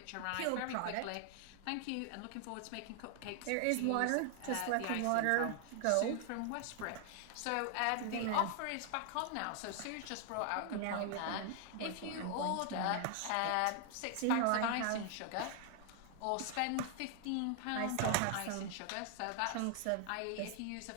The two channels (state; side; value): different; both; correlation 0.00